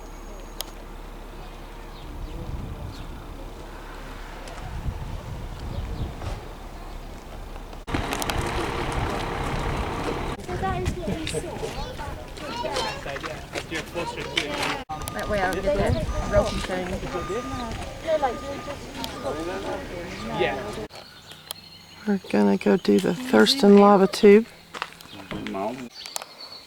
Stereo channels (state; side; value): identical; both; correlation 1.00